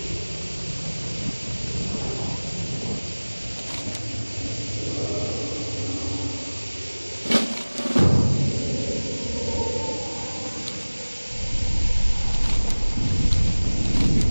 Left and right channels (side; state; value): both; inverted; correlation -1.00